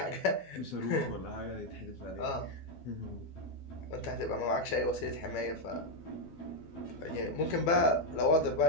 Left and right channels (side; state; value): right; late; 12 ms